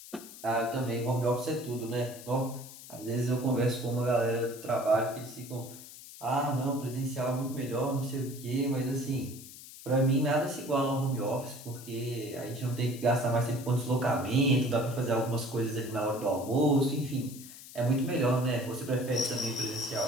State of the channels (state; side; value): noise; left; hiss, 16 dB below the sound